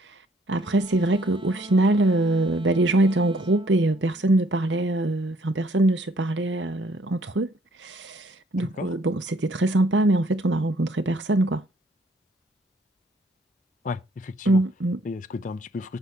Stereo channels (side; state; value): both; normal; correlation 0.64